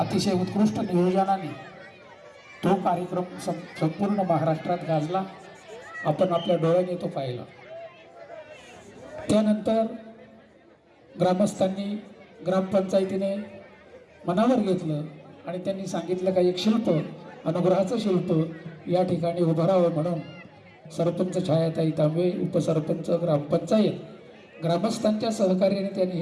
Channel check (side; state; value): both; identical; correlation 1.00